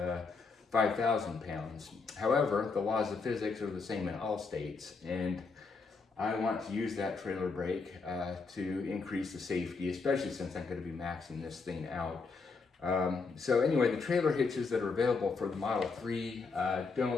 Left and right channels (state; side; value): quieter; right; 4.5 dB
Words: 5,000 pounds. However, the laws of physics are the same in all states, and I want to use that trailer brake to increase the safety, especially since I'm going to be maxing this thing out. So anyway, the trailer hitches that are available for the Model 3